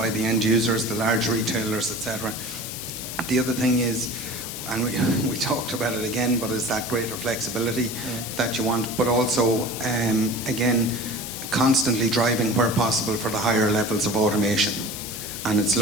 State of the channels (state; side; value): noise; left; hiss, 8 dB below the sound